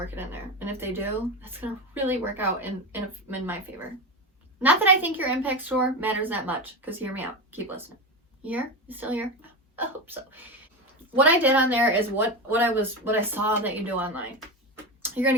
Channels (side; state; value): both; normal; correlation 0.19